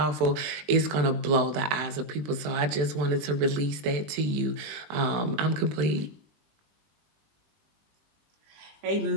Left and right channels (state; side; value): late; left; 20 ms